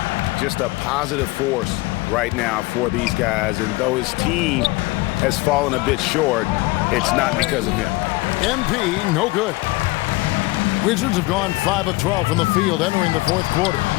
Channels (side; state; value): right; quieter; 21.7 dB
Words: Just a positive force right now for these guys, and though his team has fallen a bit short, it's not because of him. MP, no good. Wizards have gone 5 of 12 from the field entering the 4th quarter.